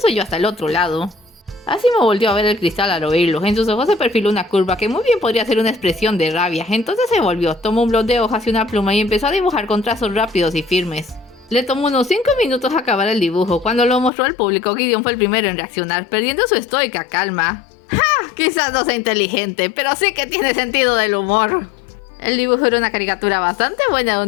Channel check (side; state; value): right; drops out; at 14.1 s